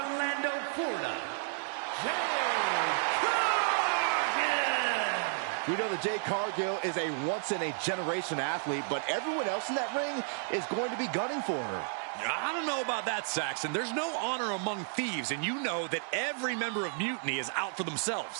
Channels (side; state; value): left; silent; 56 dB below the other